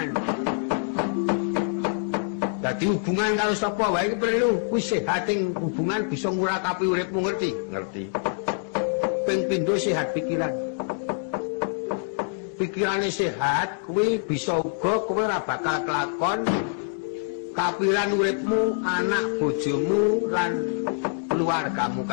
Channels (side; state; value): right; silent; digital silence